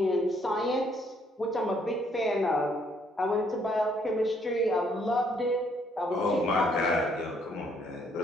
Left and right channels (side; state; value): both; normal; correlation 0.68